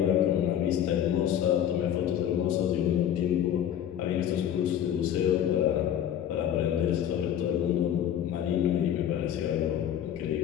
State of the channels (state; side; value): quieter; right; 10.2 dB